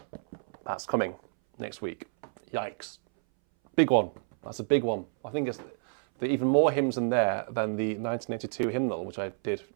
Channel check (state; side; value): silent; left; 58 dB below the other